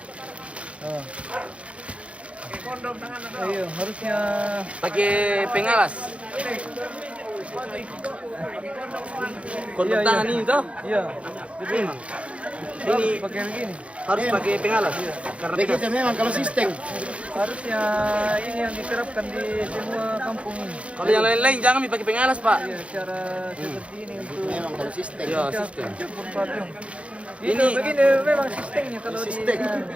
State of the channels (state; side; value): late; left; 0.062 ms